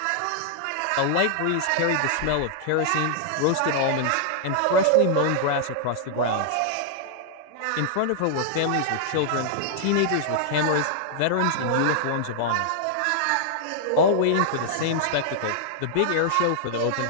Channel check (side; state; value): both; different; correlation -0.01